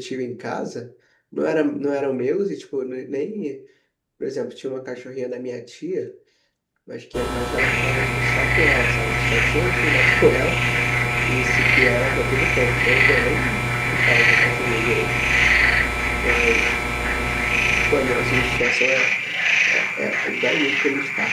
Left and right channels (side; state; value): both; identical; correlation 1.00